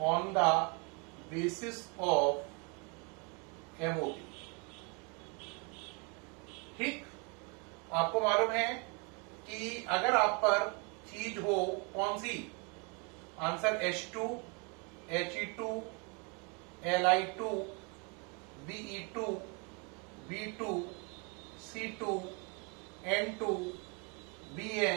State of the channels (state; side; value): quieter; left; 33.3 dB